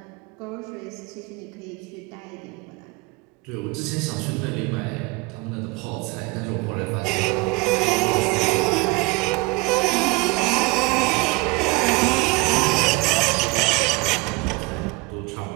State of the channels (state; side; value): quieter; left; 24.5 dB